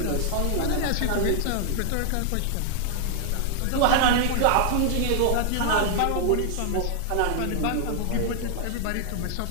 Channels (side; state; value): both; different; correlation -0.01